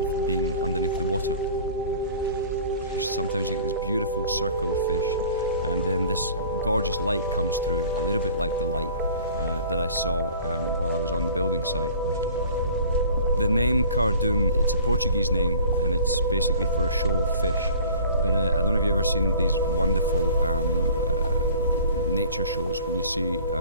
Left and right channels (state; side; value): inverted; both; correlation -0.47